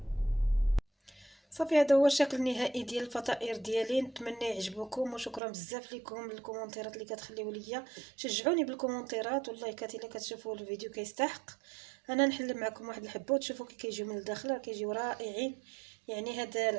صافي هذا هو الشكل النهائي ديال الفطائر ديالي، نتمنى يعجبوكم وشكرا بزاف لكم الكومونتيرات اللي كتخليو ليا، شجعوني بالكومونتيرات واللايكات الا كتشوفوا الفيديو كيستحق. انا نحل معكم واحد الحبه وتشوفوا كي كيجيو من الداخل كيجيو رائعين. يعني هاد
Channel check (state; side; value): drops out; left; at 5.4 s